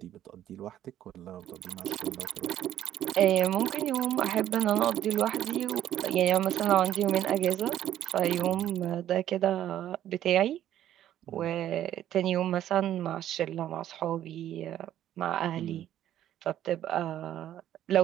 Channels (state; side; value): quieter; left; 11.8 dB